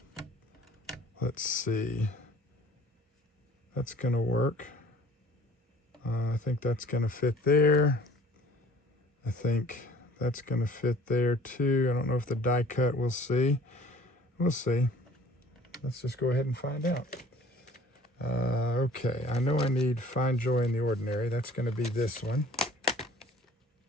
Let's see. That's going to work. I think that's going to fit there. I think that's going to fit there too. I don't know if the die cut, we'll see. We'll see. Let's just go ahead and find out. Okay, I know I need Find Joy in the Ordinary. That's going to be this one.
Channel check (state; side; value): normal; both; correlation 0.51